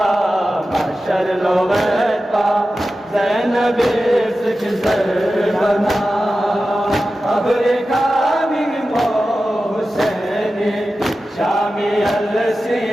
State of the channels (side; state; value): both; normal; correlation 0.93